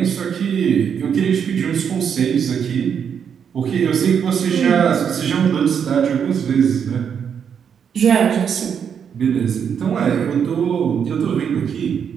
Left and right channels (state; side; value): quieter; left; 7.5 dB